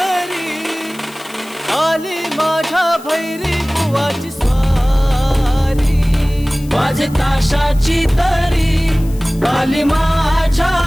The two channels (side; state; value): left; noise; hiss, 21 dB below the sound